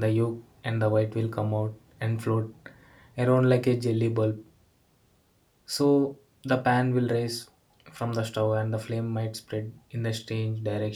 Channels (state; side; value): identical; both; correlation 1.00